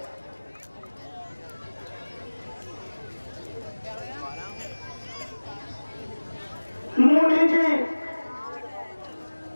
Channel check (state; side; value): inverted; both; correlation -1.00